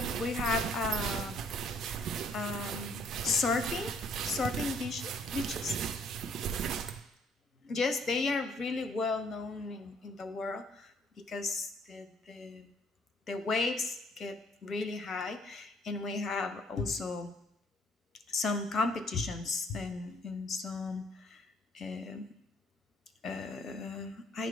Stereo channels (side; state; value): both; normal; correlation 0.63